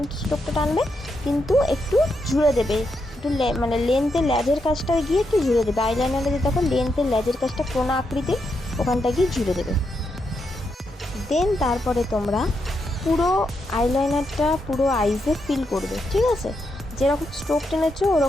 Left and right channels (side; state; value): both; normal; correlation 0.82